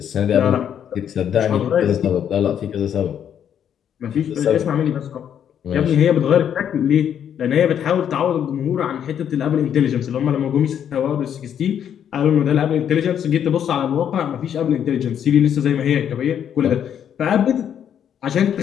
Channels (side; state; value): right; quieter; 9.1 dB